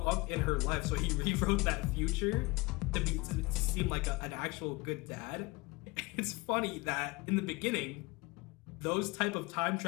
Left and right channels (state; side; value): quieter; right; 24.8 dB